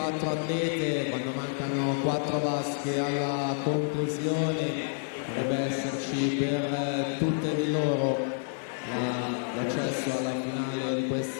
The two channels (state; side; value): silent; right; digital silence